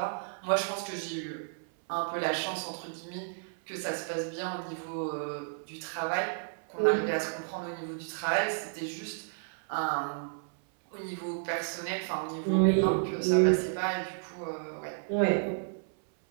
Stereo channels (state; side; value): silent; left; 56 dB below the other